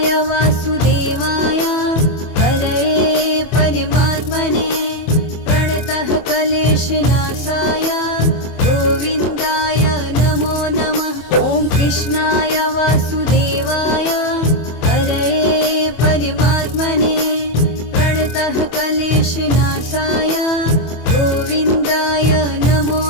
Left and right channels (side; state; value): right; late; 24 ms